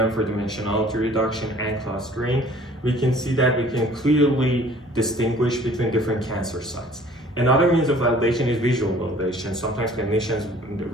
for dimensionality reduction and clustering, we can see that we can clearly distinguish between different cancer sites. Another means of validation is visual validation. Sometimes clinicians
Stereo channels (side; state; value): both; normal; correlation 0.52